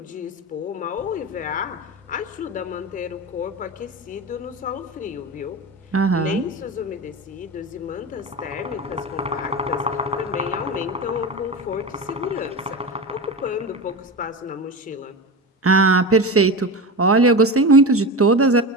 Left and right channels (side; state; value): both; normal; correlation 0.24